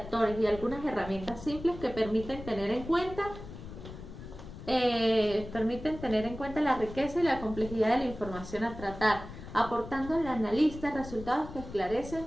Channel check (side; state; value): left; noise; rumble, 13 dB below the sound